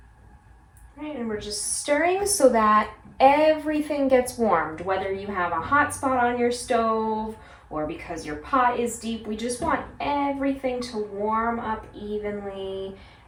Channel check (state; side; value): identical; both; correlation 1.00